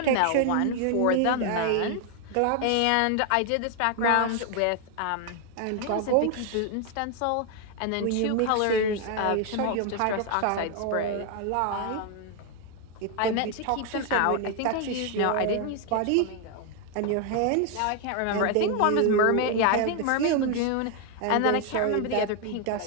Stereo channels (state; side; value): different; both; correlation 0.00